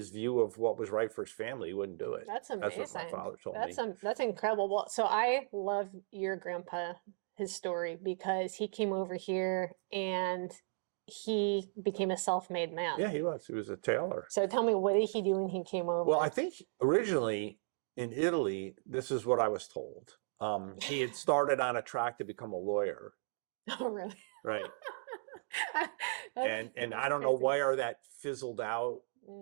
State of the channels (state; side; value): silent; left; digital silence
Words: view of what was right for his family. He wouldn't do it. That's amazing. That's what my father told me. That's incredible. Well, so I love your grandpa, his story, because he came over here and he became a self-made man. Yeah, he was. He was a tailor. So tell me, what did he do when he came over? Well, I think originally in Italy, this is what I was told. He had started on a track to become a lawyer. Oh, really? Right. And That's I don't know crazy. where that fizzled out